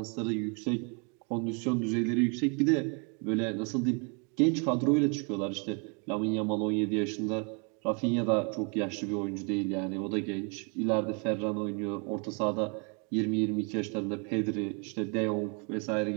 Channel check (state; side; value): quieter; left; 35.7 dB